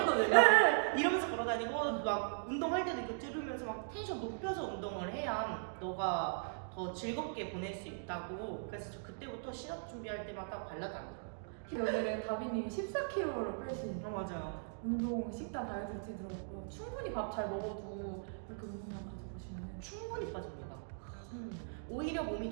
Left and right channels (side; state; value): left; silent; digital silence